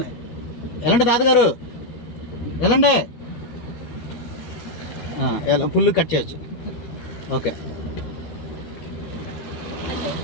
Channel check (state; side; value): late; right; 13 ms